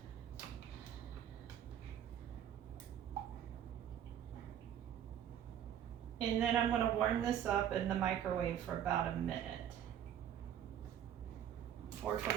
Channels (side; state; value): left; quieter; 10.0 dB